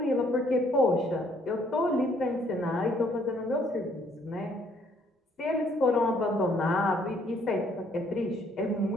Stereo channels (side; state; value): both; normal; correlation 0.65